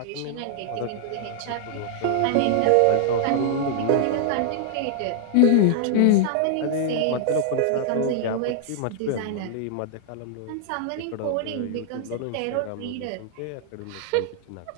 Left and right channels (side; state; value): both; different; correlation -0.01